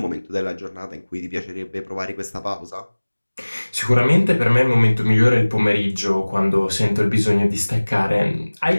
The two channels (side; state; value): both; inverted; correlation -1.00